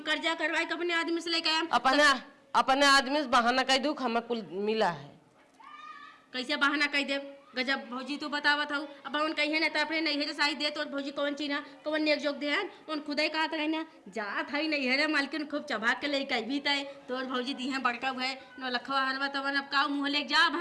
कर्जा करवाए अपने आदमी से लेके आए अपने आदमी से बहाना कह दू हमें कुल मिला है कैसे बहाना कह दे गजब भौजी तो बतावत हूँ अब उन कही ना तो अपने नहीं साई दे तो भौजी कौन चीना कौन नेक जोग दे उन खुद ही कहा था ना जात है नहीं है मालकिन खूब चबा के ले कह भी तय तोर भौजी दी है बड़का है न लखवा हलवा तब अब का मुँह ले जाब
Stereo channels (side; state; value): both; identical; correlation 1.00